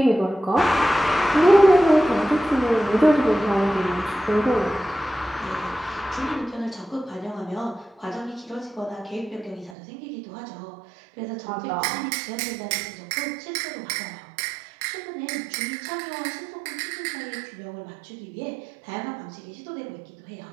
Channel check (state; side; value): drops out; left; at 9.8 s